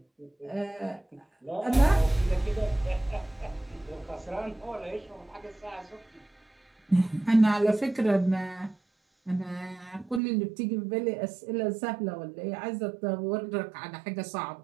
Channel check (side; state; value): left; drops out; at 10.2 s